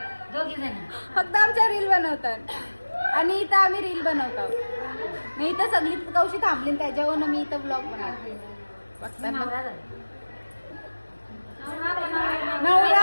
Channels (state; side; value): inverted; both; correlation -1.00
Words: फक्त आमच्या रील बनवतात आणि इथं आम्ही रील बनवतो मी इथं सगळी कौशी थांबली त्याच्यावरून मी इथं ब्लॉग बनवते नवरा